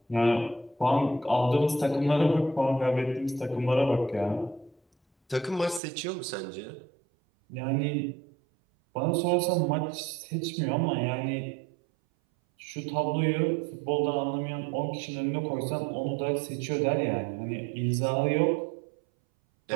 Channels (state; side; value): drops out; left; at 5.8 s